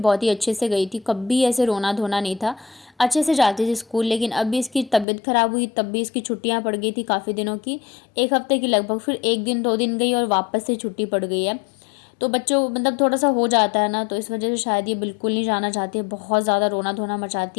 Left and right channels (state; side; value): drops out; right; at 5.1 s